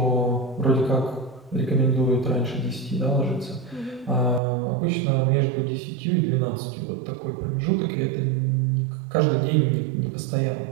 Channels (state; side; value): drops out; left; at 4.4 s